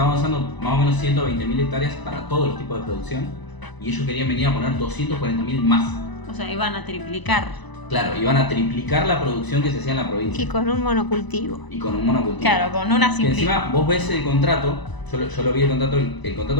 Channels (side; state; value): right; late; 1.0 ms